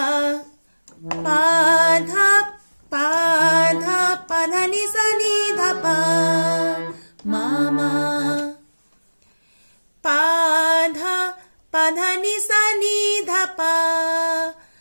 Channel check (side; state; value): both; inverted; correlation -1.00